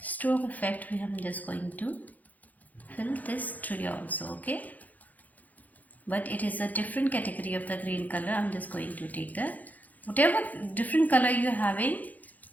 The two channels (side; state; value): right; late; 0.080 ms